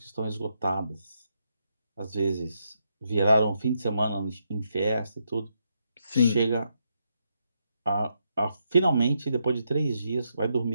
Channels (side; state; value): both; inverted; correlation -0.80